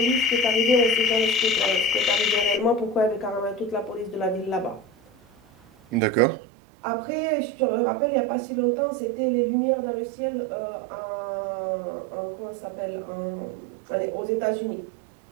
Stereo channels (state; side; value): drops out; left; at 6.0 s